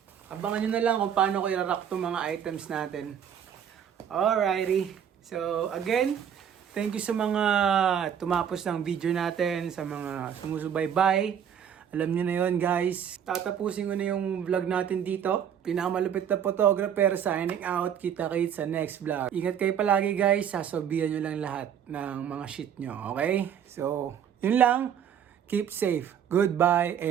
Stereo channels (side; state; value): left; quieter; 8.7 dB